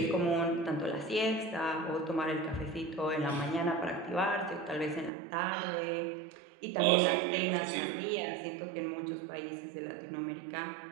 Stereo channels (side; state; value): left; drops out; at 5.1 s